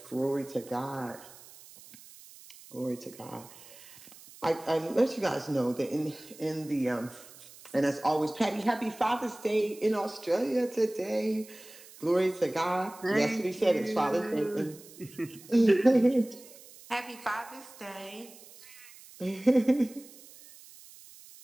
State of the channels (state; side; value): noise; right; hiss, 20 dB below the sound